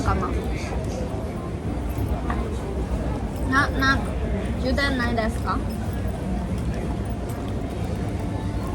You didn't like this?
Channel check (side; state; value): both; identical; correlation 1.00